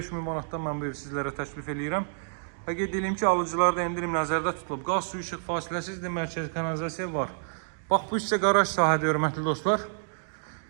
manatdan mən bu evi sizlərə təklif edirəm. Və qeyd edeyim ki, alıcılarda endirim nəzərdə tutulub. Qaz, su, işıq fasiləsizdir, mərkəzi kanalizasiya var. Bax, bu isə qaraj sahədir, hörmətli dostlar.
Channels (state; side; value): silent; left; digital silence